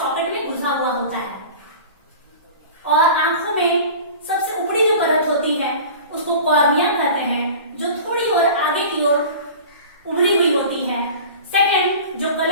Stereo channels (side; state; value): both; inverted; correlation -0.38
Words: में घुसा हुआ होता है। और आंखों में सबसे ऊपरी जो परत होती है उसको कॉर्निया कहते हैं, जो थोड़ी और आगे की ओर उभरी हुई होती है। सेकंड जो